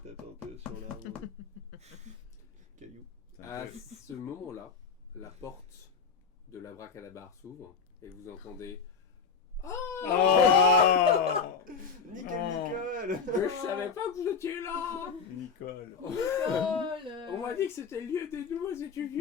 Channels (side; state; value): right; quieter; 5.6 dB